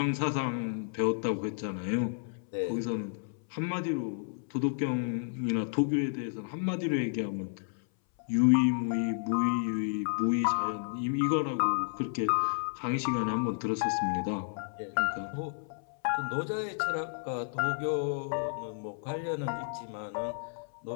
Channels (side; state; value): right; silent; 57 dB below the other